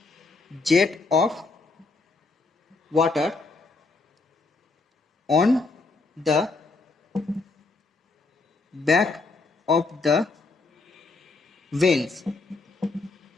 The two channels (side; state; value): right; quieter; 3.7 dB